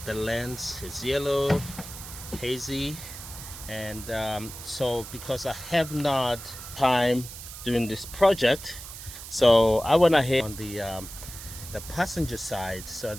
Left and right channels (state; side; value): noise; right; hiss, 12 dB below the sound